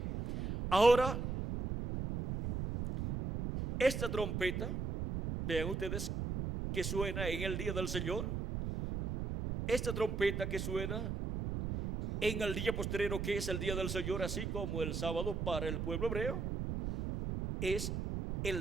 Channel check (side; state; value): right; noise; rumble, 2 dB below the sound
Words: Ahora, esta trompeta, vean ustedes que suena en el día del Señor, esta trompeta que suena en el día postrero, que es el día del Señor, así como el sábado para el pueblo hebreo, es